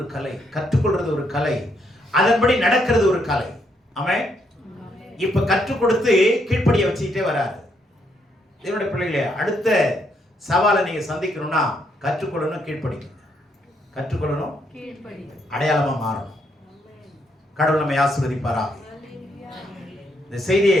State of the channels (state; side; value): normal; both; correlation 0.75